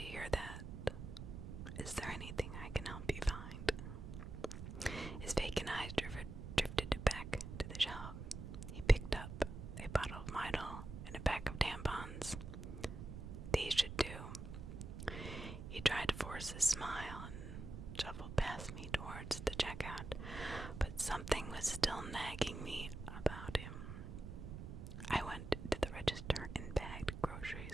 hear that. Is there anything I can help you find?" His vacant eyes drifted back to the shelf. He picked up a bottle of Midol and a pack of tampons. "These should do." He tried to force a smile and shuffled past me towards the checkout, but something was still nagging me about him. I went to the register and bagged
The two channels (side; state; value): right; noise; rumble, 8 dB below the sound